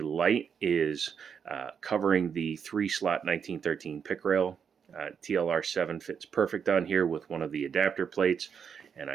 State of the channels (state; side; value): quieter; left; 7.0 dB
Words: light is covering the 3-slot 1913 pick rail. TLR7 fits perfect on here with one of the adapter plates, and